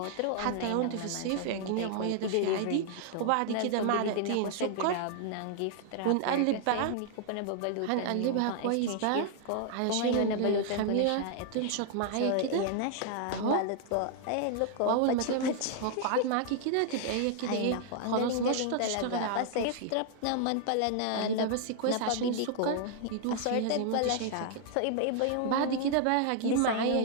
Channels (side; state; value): both; different; correlation 0.00